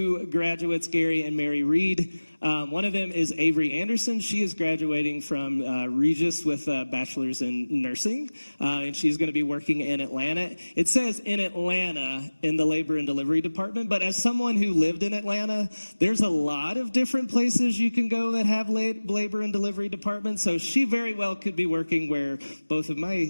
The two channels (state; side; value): inverted; both; correlation -1.00